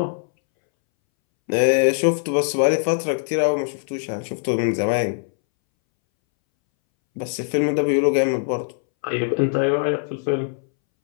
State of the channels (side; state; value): right; silent; 63 dB below the other